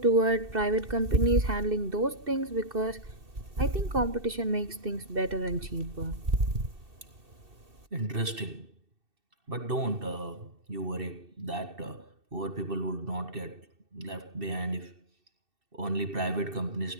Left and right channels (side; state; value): left; late; 2.7 ms